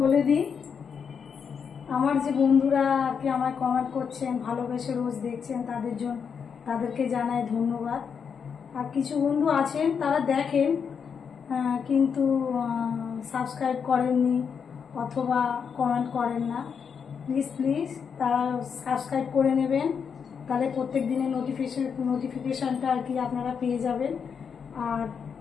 বলে দিই, আমার যে বন্ধুরা আর কি আমায় কমেন্ট করছেন, ভালোবেসে রোজ দেখছেন, তাদেরকে জানাই ধন্যবাদ। আর কিছু বন্ধু আছেন তারা দেখেন কিন্তু সাবস্ক্রাইব করেননি অথবা কমেন্ট করেন না। প্লিজ তারা সাবস্ক্রাইব করে নেবেন, তাহলে প্রত্যেক দিনের নোটিফিকেশানটা আর কি আপনারা পেয়ে যাবেন। আর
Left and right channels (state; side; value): quieter; right; 6.6 dB